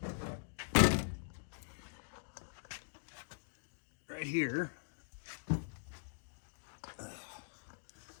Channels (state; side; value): silent; right; digital silence